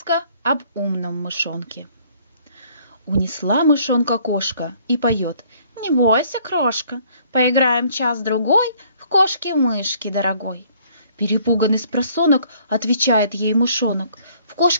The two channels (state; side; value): inverted; both; correlation -0.60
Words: об умном мышонке. Унесла мышонка кошка и поет: «Не бойся, крошка, поиграем час-другой в кошки-мышки, дорогой». Перепуганный спросонок отвечает ей мышонок: «В